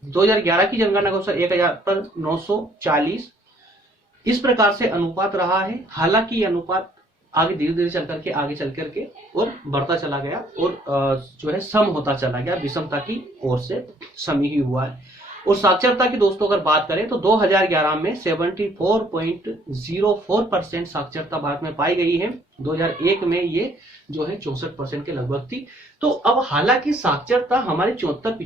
2011 की जनगणना के अनुसार 1000 पर 940। इस प्रकार से अनुपात रहा है। हालांकि अनुपात आगे धीरे धीरे चल करके और बढ़ता चला गया, और जो है सम होता चला गया, विषमता की ओर से सम ही हुआ है। और साक्षरता की दोस्तों अगर बात करें तो 2011 में 74.04% साक्षरता भारत में पाई गई है। 2001 में ये जो है 64% के लगभग थी। तो अब हालांकि साक्षरता हमारी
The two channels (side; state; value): both; normal; correlation 0.62